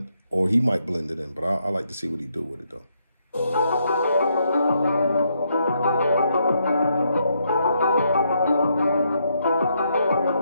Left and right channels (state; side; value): inverted; both; correlation -0.76